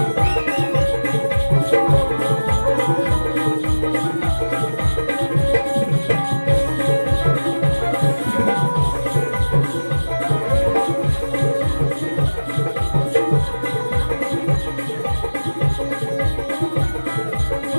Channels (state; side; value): inverted; both; correlation -1.00